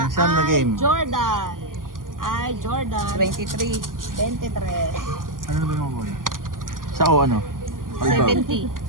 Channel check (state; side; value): late; left; 0.90 ms